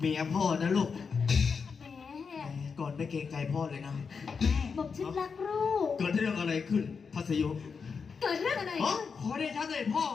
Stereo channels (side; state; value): right; quieter; 5.6 dB